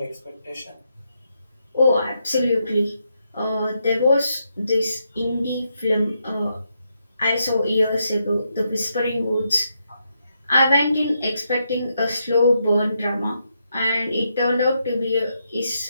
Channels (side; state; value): both; inverted; correlation -0.81